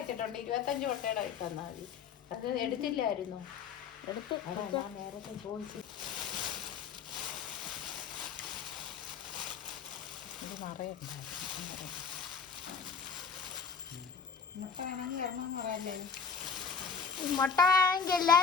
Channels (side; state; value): right; quieter; 6.1 dB